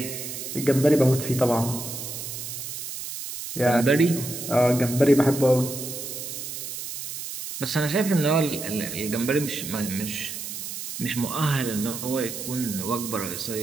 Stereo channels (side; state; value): right; noise; hiss, 7 dB below the sound